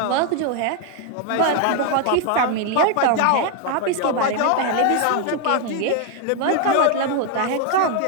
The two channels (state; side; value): different; both; correlation 0.00